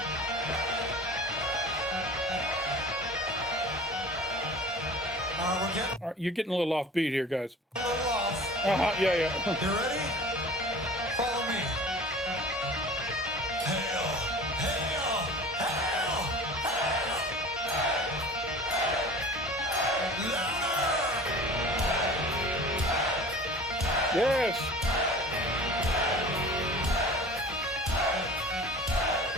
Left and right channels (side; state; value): both; normal; correlation 0.41